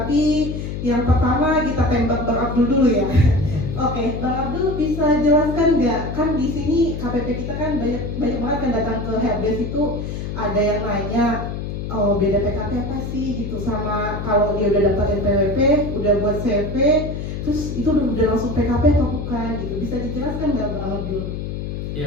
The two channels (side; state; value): left; noise; hum, 5 dB below the sound